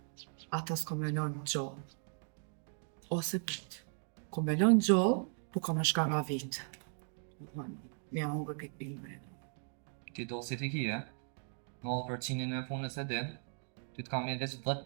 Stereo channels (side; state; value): left; silent; 53 dB below the other